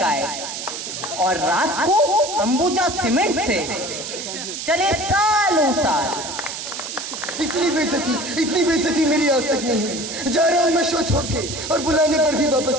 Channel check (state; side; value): noise; right; hiss, 7 dB below the sound